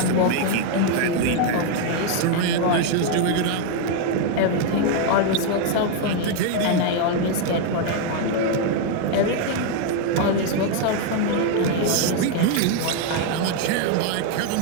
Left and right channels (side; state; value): both; different; correlation 0.01